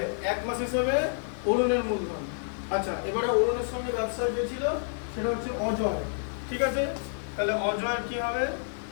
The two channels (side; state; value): right; silent; digital silence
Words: এক মাস হিসেবে অরুণের মূলধন। আচ্ছা, এবারে অরুণের সঙ্গে ব্যবসায় যে ছিল সেটা হচ্ছে অজয়, ঠিক আছে? তাহলে অজয়ের কি হবে?